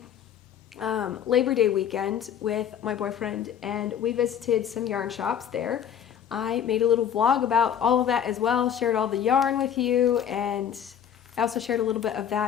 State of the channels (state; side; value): quieter; right; 9.0 dB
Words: Labor Day weekend with my boyfriend, and we visited some yarn shops there. I made a little vlog about all of that as well, shared all the yarn with you, and I also shared a little bit of